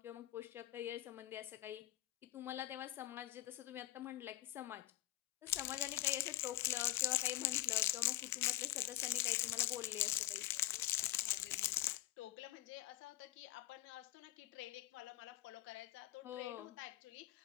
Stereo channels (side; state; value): right; quieter; 15.5 dB